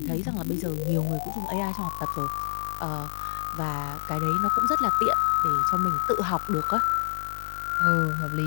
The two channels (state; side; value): silent; right; 60 dB below the other